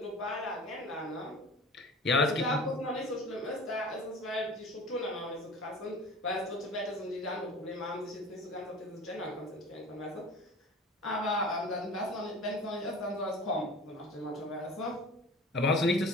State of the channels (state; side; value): normal; both; correlation 0.39